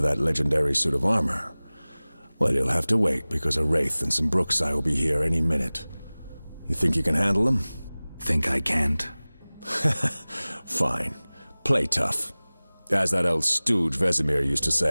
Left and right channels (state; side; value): inverted; both; correlation -0.99